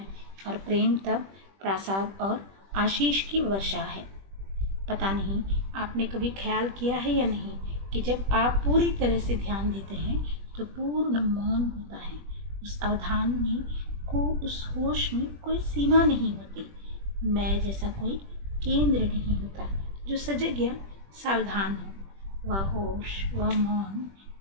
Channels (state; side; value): late; left; 21 ms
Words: और प्रेम तब प्रसाद और आशीष की वर्षा है। पता नहीं आपने कभी ख्याल किया है या नहीं कि जब आप पूरी तरह से ध्यान देते हैं तो पूर्ण मौन होता है। उस अवधान में उस होश में कोई सीमा नहीं होती। मैं जैसा कोई केंद्र नहीं होता जो सजग या सावधान हो। वह होश, वह मौन